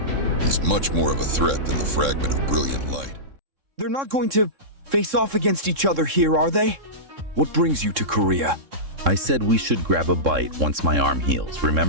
He's much more of a threat than the fragment of brilliant light. They're not going to face off against each other here, are they? What brings you to Korea? I said we should grab a bite once my arm heals,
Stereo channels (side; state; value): left; late; 3.7 ms